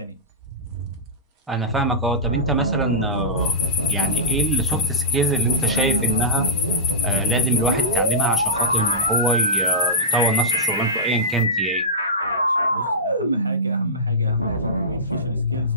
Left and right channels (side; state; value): both; normal; correlation -0.16